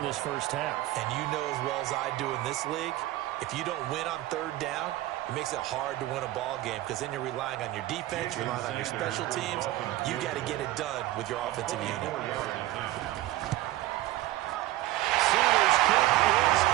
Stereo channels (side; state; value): left; quieter; 16.0 dB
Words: this first half. And you know as well as I do in this league, if you don't win on 3rd down, it makes it hard to win a ball game because then you're relying on your defense, you're relying on your special teams. You got to get it done with your offensive unit. Sanders' kick is